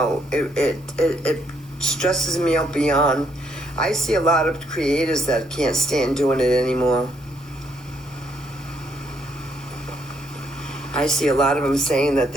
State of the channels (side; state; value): both; normal; correlation 0.72